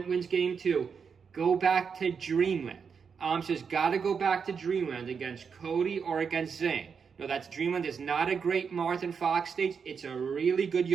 wins game 2. Go back to Dreamland. AMSA's got to go back to Dreamland against Cody or against Zayn. No, that's Dreamland is not a great Martha Fox stage. It's a really good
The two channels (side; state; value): left; quieter; 6.2 dB